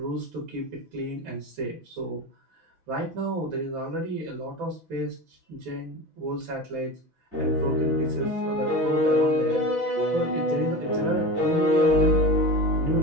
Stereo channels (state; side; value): late; left; 6.0 ms